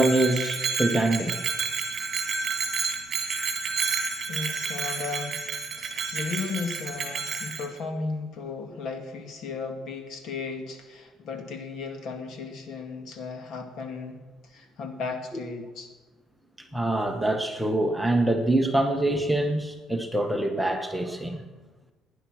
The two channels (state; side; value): normal; both; correlation 0.78